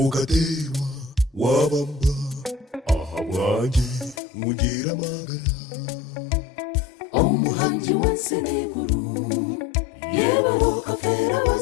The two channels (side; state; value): right; drops out; at 4.2 s